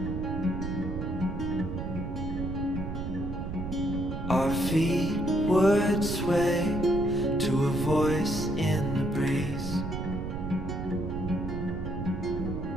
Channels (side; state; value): right; noise; rumble, 5 dB below the sound